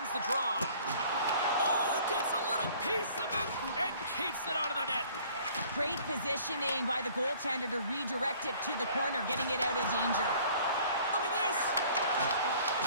the draw. Oh, gets a little piece of it and keeps it out of the net. Great positioning by the goaltender to redirect it to the corner, getting it out of danger. Look at this.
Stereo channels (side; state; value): both; inverted; correlation -0.53